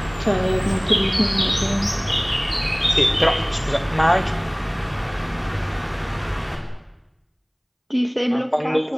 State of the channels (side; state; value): both; identical; correlation 1.00